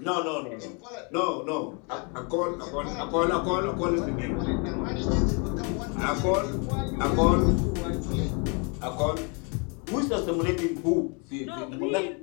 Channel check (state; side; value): quieter; right; 34.8 dB